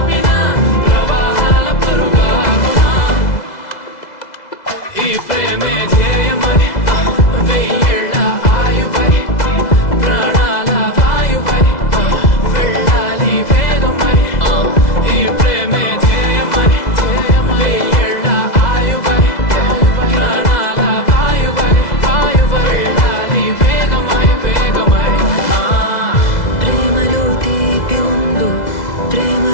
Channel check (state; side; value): late; right; 2.0 ms